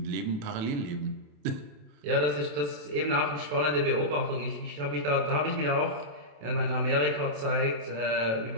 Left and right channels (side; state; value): left; late; 27 ms